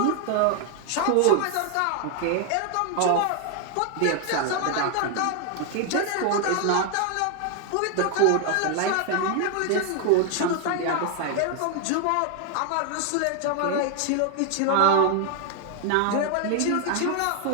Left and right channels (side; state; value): both; different; correlation 0.00